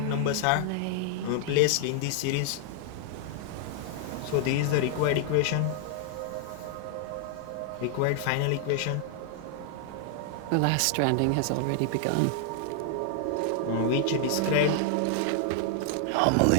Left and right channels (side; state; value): both; different; correlation 0.00